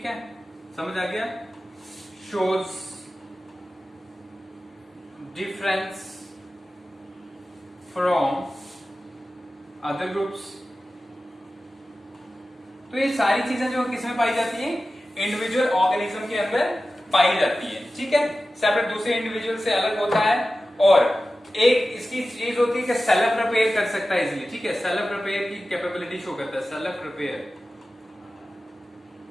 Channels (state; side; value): normal; both; correlation 0.94